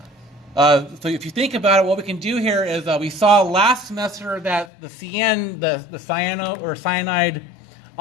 So if you think about it, what we can do here is we saw last semester that the CN, the cyano or cyanide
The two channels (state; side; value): drops out; right; at 4.7 s